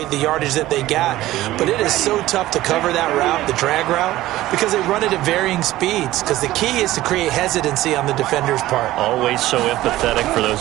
the yardage that they got. But it is so tough to cover that route, the drag route, because they run it at varying speeds. Because the key is to create hesitancy on the defender's part. Always so empathetic for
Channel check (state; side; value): quieter; left; 15.9 dB